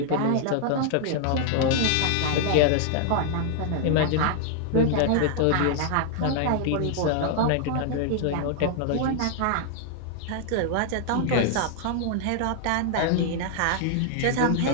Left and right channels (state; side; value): different; both; correlation 0.00